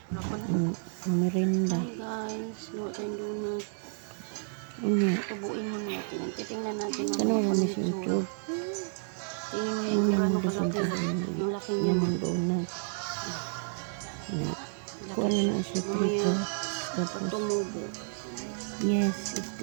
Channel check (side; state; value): left; silent; digital silence